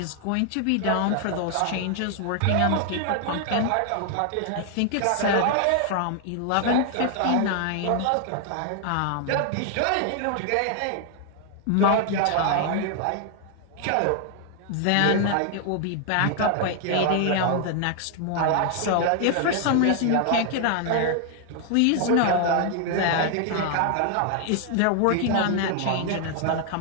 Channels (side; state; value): both; different; correlation 0.00